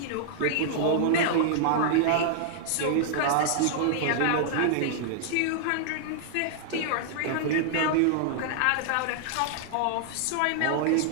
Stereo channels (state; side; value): different; both; correlation -0.01